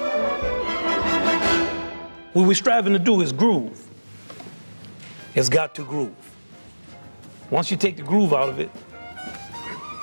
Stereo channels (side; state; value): both; inverted; correlation -1.00